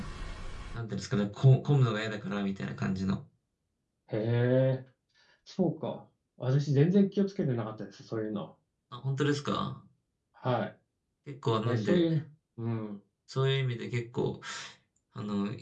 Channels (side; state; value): both; identical; correlation 1.00